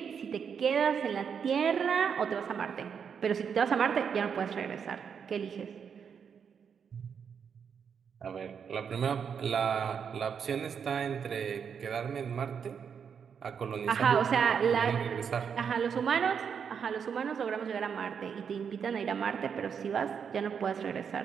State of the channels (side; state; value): left; quieter; 7.0 dB